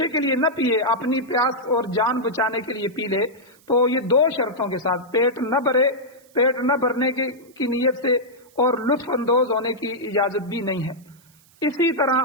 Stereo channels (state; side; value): noise; right; hiss, 30 dB below the sound